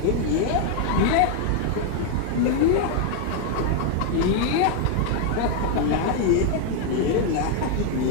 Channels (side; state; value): both; different; correlation 0.00